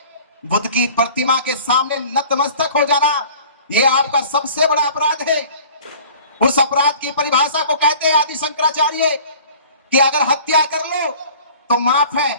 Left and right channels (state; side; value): inverted; both; correlation -0.47